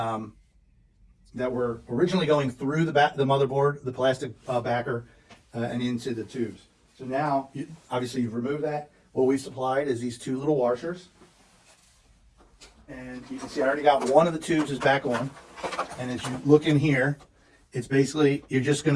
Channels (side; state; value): both; identical; correlation 1.00